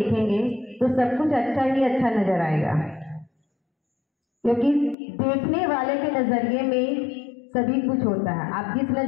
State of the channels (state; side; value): drops out; right; at 5.0 s